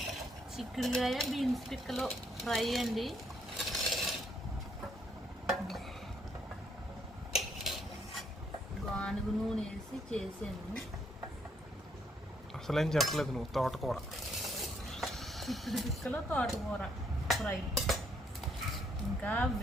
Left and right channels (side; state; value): both; normal; correlation 0.71